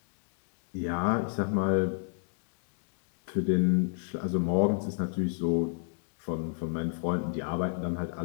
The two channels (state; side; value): silent; right; 57 dB below the other